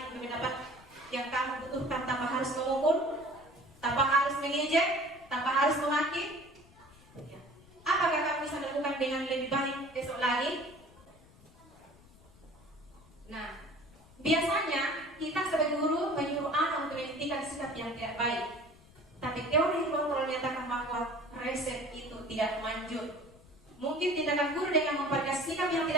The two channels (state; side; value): noise; left; rumble, 25 dB below the sound